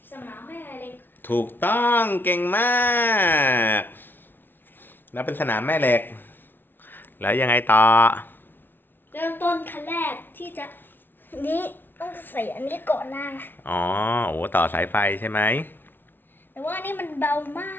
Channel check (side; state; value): right; late; 0.097 ms